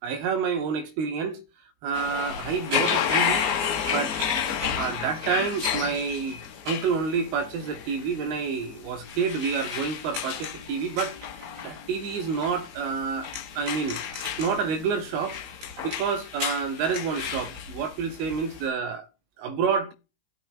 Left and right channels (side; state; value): left; late; 19 ms